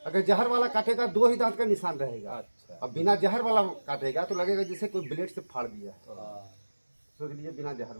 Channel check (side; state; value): both; inverted; correlation -1.00